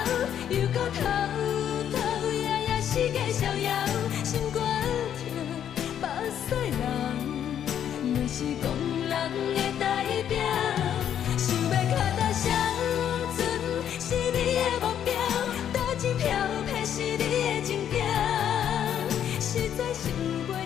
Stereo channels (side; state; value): right; quieter; 9.6 dB